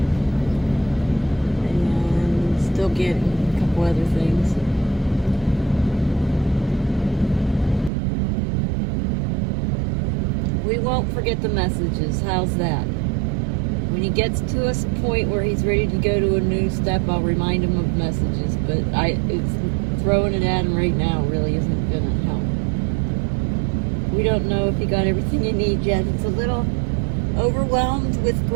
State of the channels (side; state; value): left; drops out; at 7.9 s